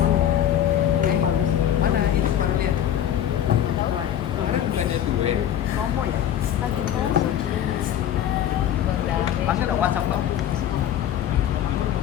mana itu baru lihat. Orang bukannya duit. Promo ya? Lagi promo. Masih dong WhatsApp dong.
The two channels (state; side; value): quieter; right; 10.6 dB